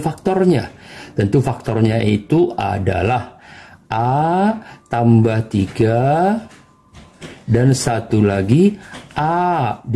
faktornya. Tentu faktornya itu adalah A tambah 3 dan satu lagi A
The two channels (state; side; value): identical; both; correlation 1.00